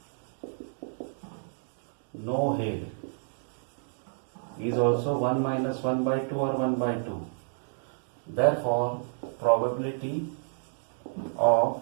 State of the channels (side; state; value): left; silent; digital silence